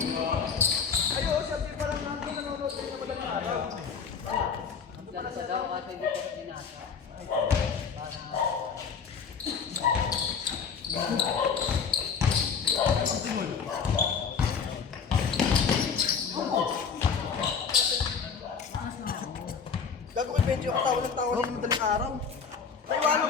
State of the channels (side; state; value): right; quieter; 6.2 dB